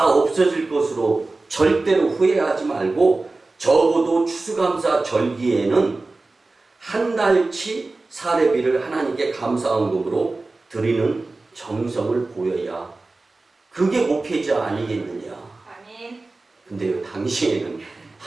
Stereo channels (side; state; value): left; quieter; 3.4 dB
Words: 없어질 것으로 절대로 후회하지 말고 적어도 추수감사 절기에는 한 달치 사례비를 하나님께 감사헌금으로 드리는 정성을 보여야 그게 목회자 아니겠느냐. 근데요, 당시에는